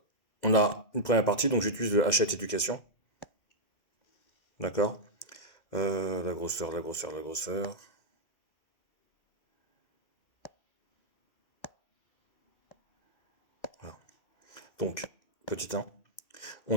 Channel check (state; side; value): late; right; 2.0 ms